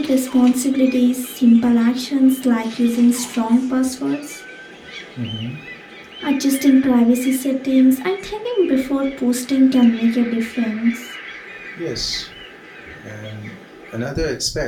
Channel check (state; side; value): identical; both; correlation 1.00